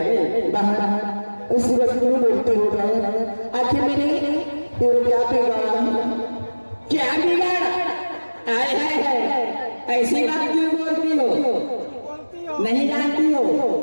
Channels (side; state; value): both; inverted; correlation -1.00